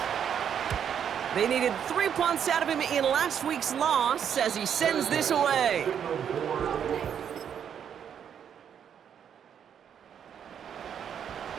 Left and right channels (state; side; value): quieter; left; 8.4 dB